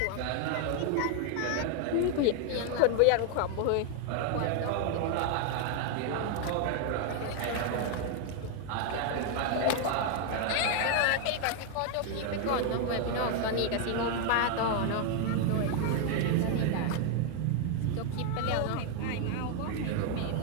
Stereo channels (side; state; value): both; different; correlation 0.00